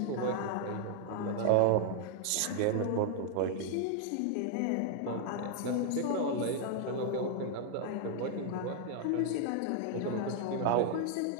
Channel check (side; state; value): both; different; correlation 0.00